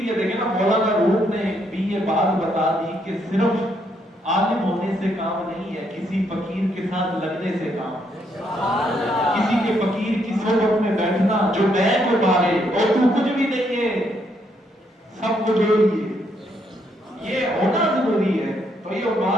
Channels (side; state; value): both; normal; correlation 0.74